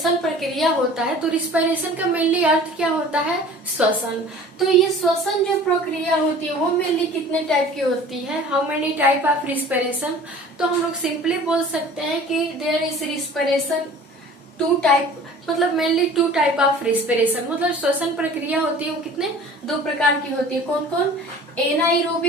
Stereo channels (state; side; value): normal; both; correlation 0.45